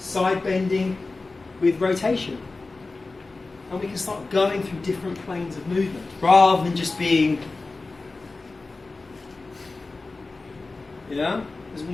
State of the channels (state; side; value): quieter; right; 3.6 dB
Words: bending with rotation. And we can start going through different planes of movement rather than just being, yeah, as